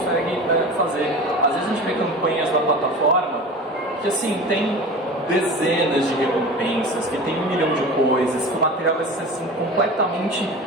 fazer. Às vezes a gente vê campanhas na plataforma que, assim, tem dezenas de recompensas, que tem 1 milhão de coisas, que o material vai ser assim, completamente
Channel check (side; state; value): both; normal; correlation 0.34